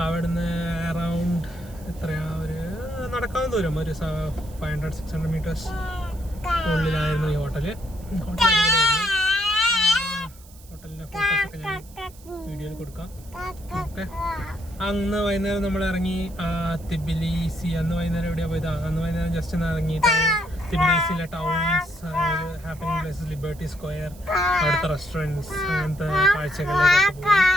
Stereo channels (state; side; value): noise; right; hiss, 23 dB below the sound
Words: അവിടുന്ന് അറൗണ്ട് എത്രയാ, ഒരു നടക്കാവുന്ന ദൂരം, ഒരു 500-600 മീറ്റേഴ്സ് ഉള്ളിലായിരുന്നു ഈ ഹോട്ടലിൻ്റെ ഫോട്ടോസൊക്കെ ഞാൻ വീഡിയോയിൽ കൊടുക്കാം. ഓക്കെ, അന്ന് വൈകുന്നേരം നമ്മൾ ഇറങ്ങി തിബിലിസി. അന്ന് വൈകുന്നേരം എവിടെയാണ് പോയത്? അന്ന് വൈകുന്നേരം ജസ്റ്റ് ഒന്ന് ഇറങ്ങി തിബിലിസിയിലെ towns, happening places, Liberty Square, അവിടുത്തെ റെസ്റ്റോറൻറ്റ്സ്, അങ്ങനത്തെ കാഴ്ചകളിലേക്ക് പോയി.